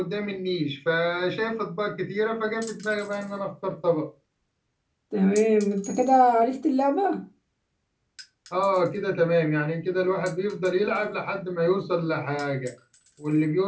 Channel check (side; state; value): both; identical; correlation 1.00